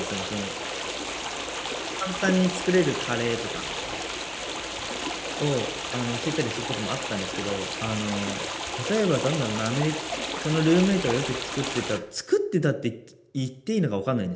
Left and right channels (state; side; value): identical; both; correlation 1.00